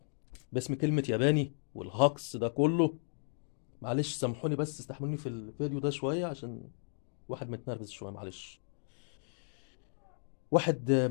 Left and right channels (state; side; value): silent; right; digital silence